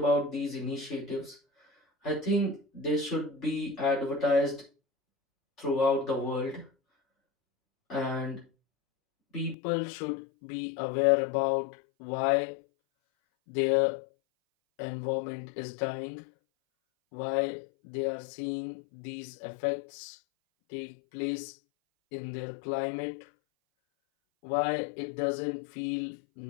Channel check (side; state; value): right; drops out; at 9.6 s